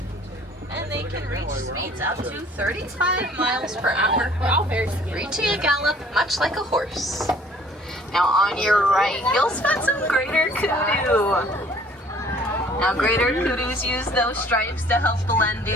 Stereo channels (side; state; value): both; normal; correlation 0.56